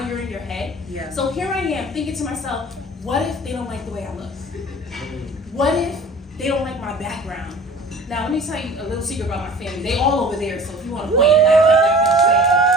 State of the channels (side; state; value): both; normal; correlation 0.44